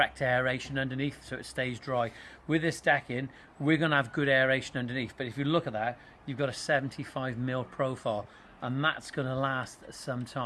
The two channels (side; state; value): both; identical; correlation 1.00